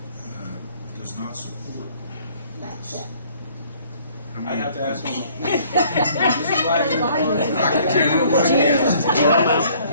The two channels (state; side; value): inverted; both; correlation -0.59